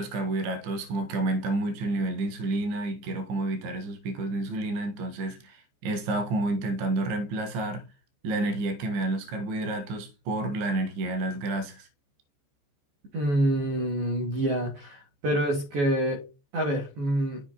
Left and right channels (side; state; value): left; late; 15 ms